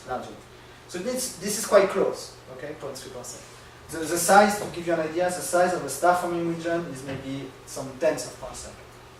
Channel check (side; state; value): both; identical; correlation 1.00